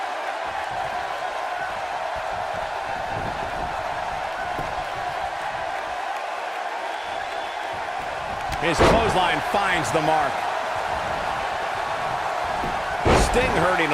His clothesline finds the mark. Sting hurting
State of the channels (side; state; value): both; identical; correlation 1.00